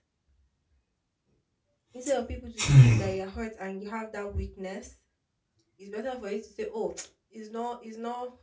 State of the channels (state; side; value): identical; both; correlation 1.00